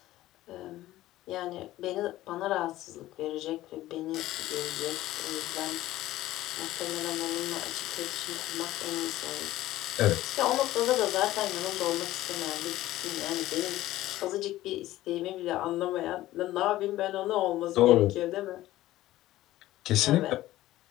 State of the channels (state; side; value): quieter; right; 15.6 dB